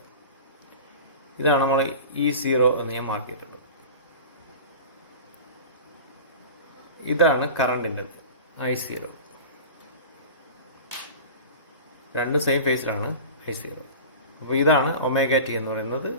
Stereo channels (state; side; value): inverted; both; correlation -0.35